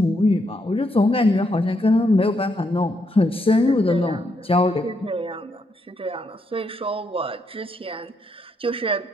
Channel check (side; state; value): both; normal; correlation 0.78